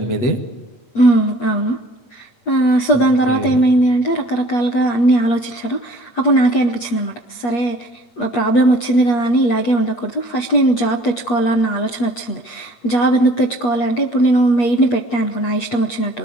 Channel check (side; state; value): right; late; 8.4 ms